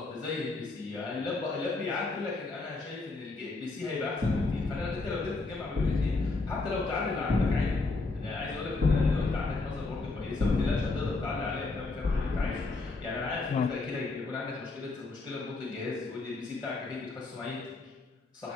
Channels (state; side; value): quieter; right; 3.5 dB